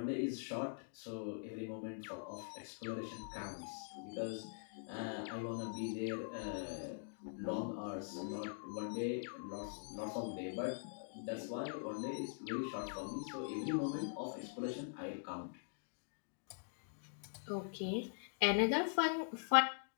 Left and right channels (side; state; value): right; silent; digital silence